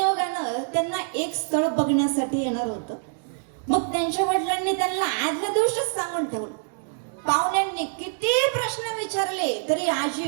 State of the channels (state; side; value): silent; left; digital silence